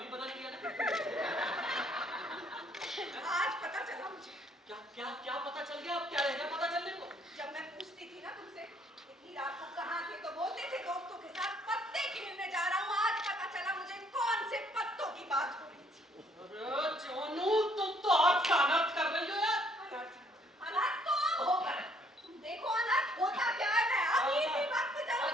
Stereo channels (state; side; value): normal; both; correlation 0.65